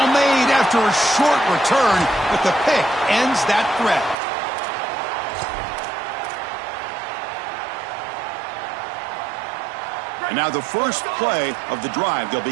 made after a short return, but the pick ends that threat. And now the first play of the drive. They'll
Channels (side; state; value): left; drops out; at 4.2 s